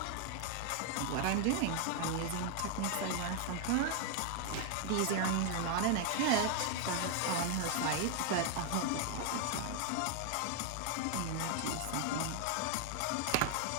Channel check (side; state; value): both; different; correlation 0.00